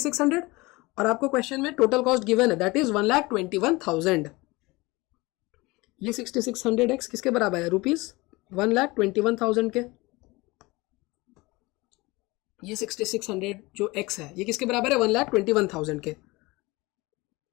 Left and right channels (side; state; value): right; quieter; 22.8 dB